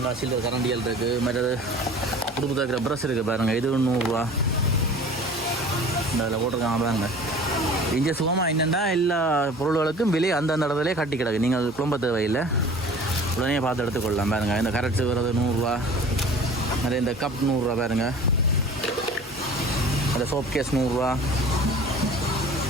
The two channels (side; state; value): both; normal; correlation 0.43